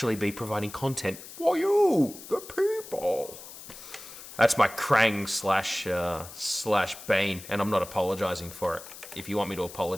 be providing content for you, the people. That's my Krang slash Bane, and I'm not apologizing for it. If you want me to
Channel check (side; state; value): left; noise; hiss, 15 dB below the sound